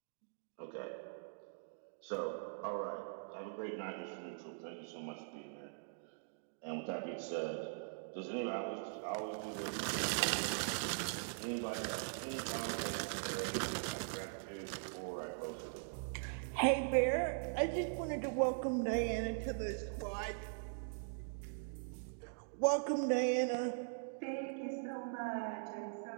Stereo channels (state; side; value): silent; left; digital silence